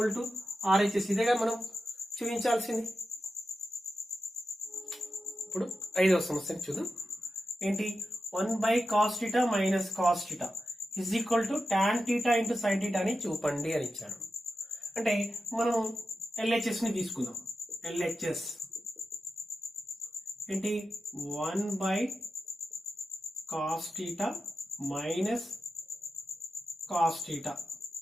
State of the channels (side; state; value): both; normal; correlation 0.91